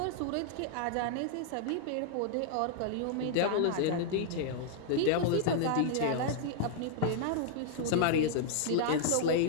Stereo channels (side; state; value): both; different; correlation -0.01